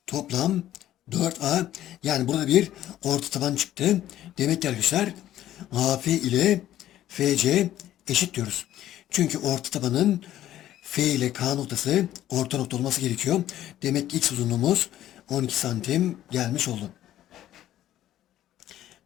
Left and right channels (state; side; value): quieter; right; 12.8 dB